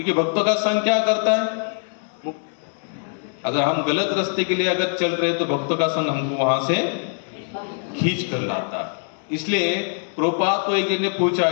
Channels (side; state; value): right; silent; 63 dB below the other